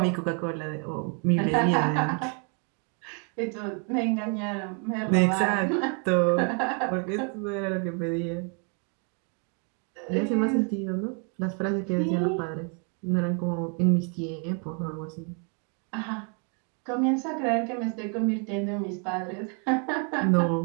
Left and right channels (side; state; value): left; quieter; 38.8 dB